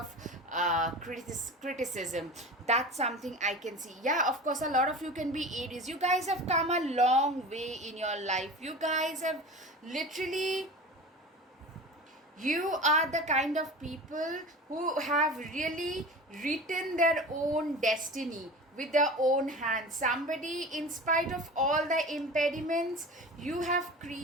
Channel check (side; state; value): both; normal; correlation 0.34